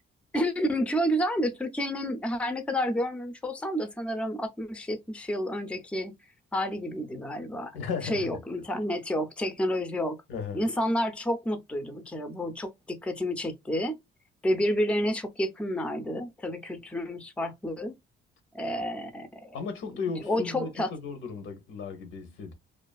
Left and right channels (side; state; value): both; normal; correlation 0.72